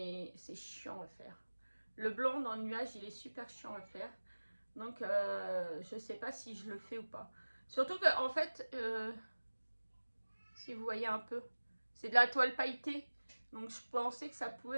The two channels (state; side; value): inverted; both; correlation -1.00